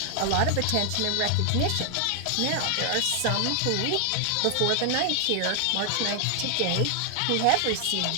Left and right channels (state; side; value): different; both; correlation 0.00